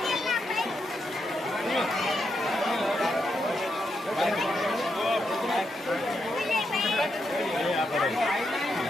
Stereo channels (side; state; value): both; normal; correlation 0.82